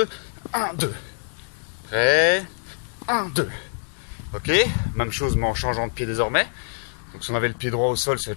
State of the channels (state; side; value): silent; right; digital silence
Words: 1, 2. Prêt? 1, 2. Ok? Même chose mais en changeant de pied désormais. Donc si on avait le pied droit au sol, ça va